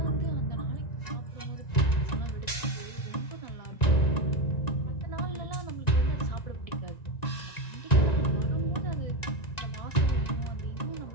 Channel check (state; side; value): late; right; 1.9 ms